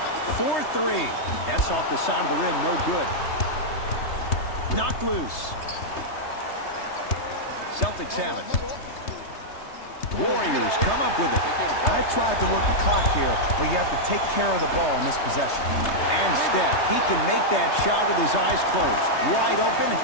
4-3. That's off the side of the rim, no good. Knocked loose. Celtics have it. Warriors come up with it. I tried to work the clock here, but you have to take care of the ball in this possession. And Steph, he can make that shot with his eyes closed. Wide open,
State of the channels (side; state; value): right; late; 3.3 ms